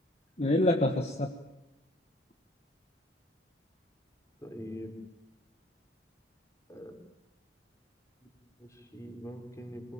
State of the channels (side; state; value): both; normal; correlation 0.55